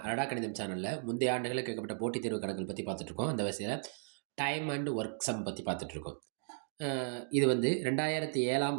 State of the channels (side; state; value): left; silent; digital silence